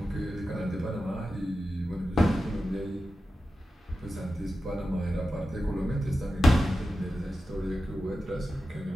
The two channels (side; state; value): both; normal; correlation 0.92